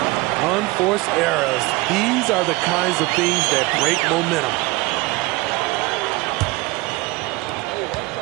Unforced errors. These are the kinds of things that break momentum.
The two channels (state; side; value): quieter; left; 21.9 dB